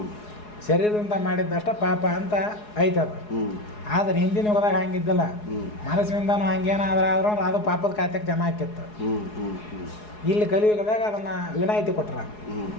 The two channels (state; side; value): late; right; 4.8 ms